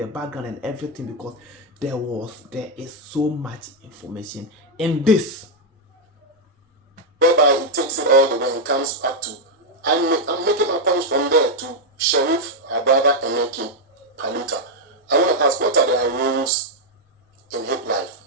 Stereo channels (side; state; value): both; normal; correlation 0.00